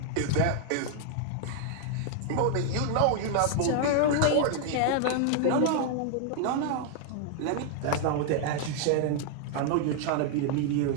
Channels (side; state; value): both; different; correlation 0.00